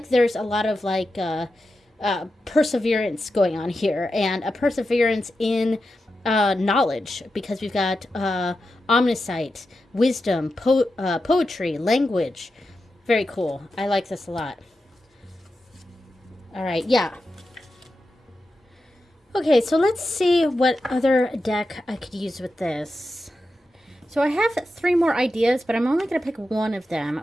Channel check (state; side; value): normal; both; correlation 0.90